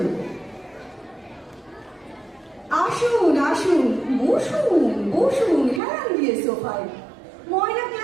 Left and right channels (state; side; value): drops out; left; at 5.8 s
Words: আসুন আসুন, বসুন বসুন হেলান দিয়ে সোফায়। ময়লা